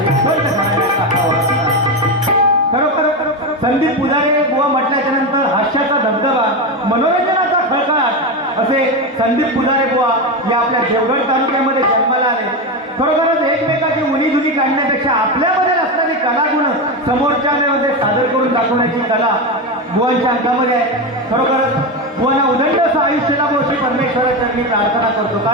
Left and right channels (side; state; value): both; normal; correlation 0.15